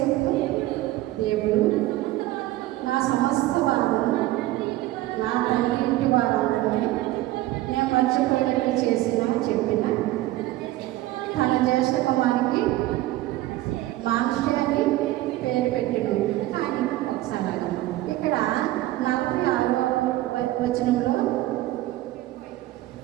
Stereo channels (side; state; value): left; quieter; 16.4 dB